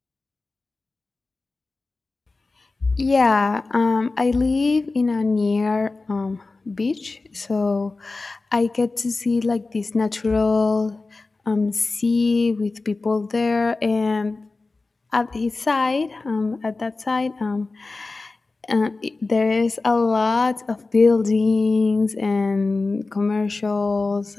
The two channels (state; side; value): quieter; right; 3.6 dB